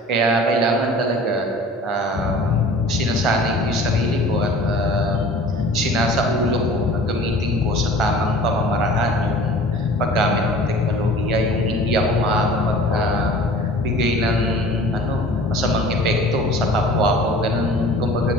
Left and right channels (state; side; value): normal; both; correlation 0.44